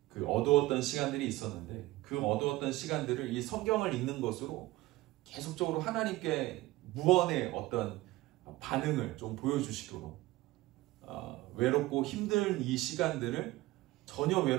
그 어두웠던 시간들이 있었는데, 그 어두웠던 시간들을 이 성경을 읽는 것으로 계속적으로 하나님께 무언의 어떤 반응을 좀 보여주시도록, 외롭고 힘든 이 시간들을 전혀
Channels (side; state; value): left; quieter; 18.3 dB